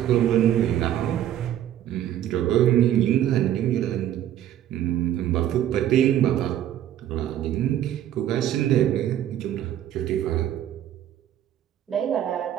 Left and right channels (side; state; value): left; quieter; 11.5 dB